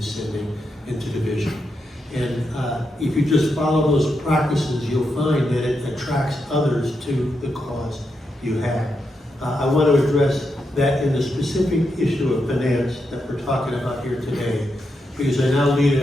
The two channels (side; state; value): both; normal; correlation 0.84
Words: into division. And if you just follow those practices, you'll find that it attracts others to the cause you have. I want to address that in the specific issue of finance that we're talking about here today, because I now lead